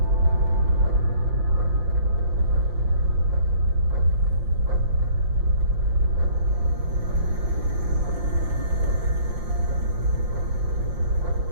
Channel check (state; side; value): late; left; 5.7 ms